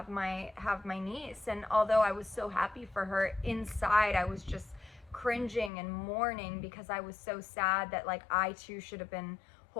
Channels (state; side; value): drops out; right; at 5.7 s